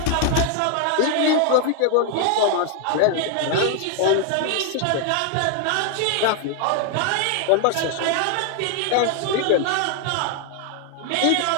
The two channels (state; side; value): different; both; correlation 0.00